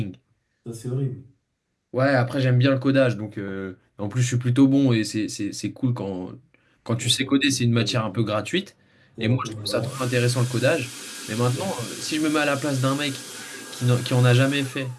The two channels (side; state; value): both; identical; correlation 1.00